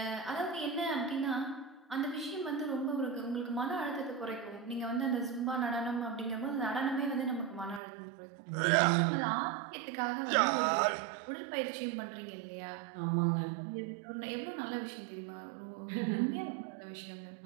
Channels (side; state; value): left; drops out; at 7.8 s